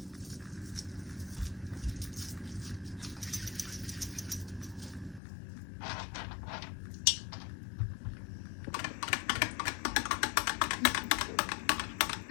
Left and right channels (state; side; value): drops out; right; at 5.2 s